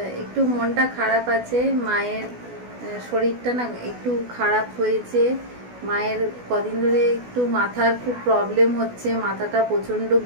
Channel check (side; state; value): left; late; 16 ms